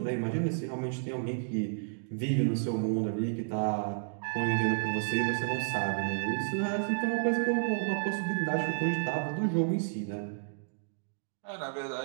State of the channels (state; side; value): silent; left; digital silence